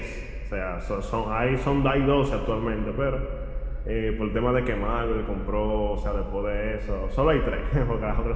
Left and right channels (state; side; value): identical; both; correlation 1.00